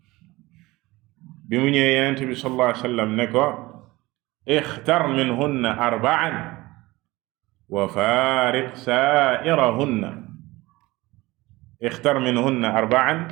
bi mu ñëwee Yonent bi sallallahu alayhi wa sallam ne ko ixtar minhunna arba'an wa faariq saa'irahunna. ixtar minhunna arba'an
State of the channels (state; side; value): quieter; left; 20.3 dB